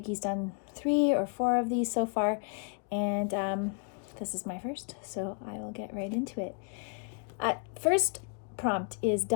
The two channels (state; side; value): quieter; right; 39.9 dB